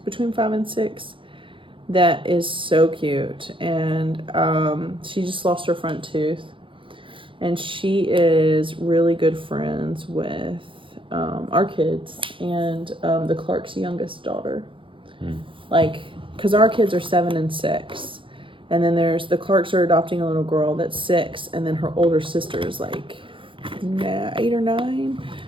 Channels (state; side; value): late; left; 0.25 ms